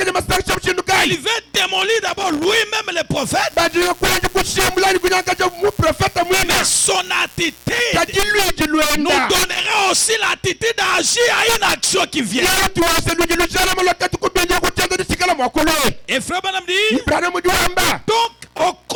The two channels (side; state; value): both; identical; correlation 1.00